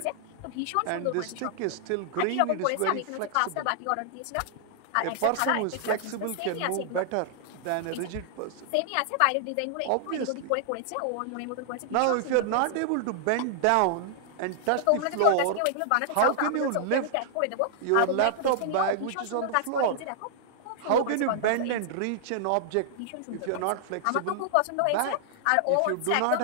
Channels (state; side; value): different; both; correlation -0.01